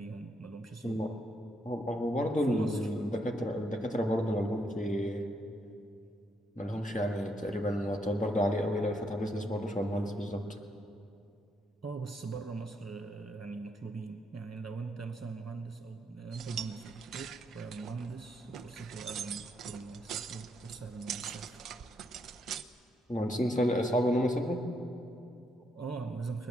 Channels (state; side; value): normal; both; correlation 0.76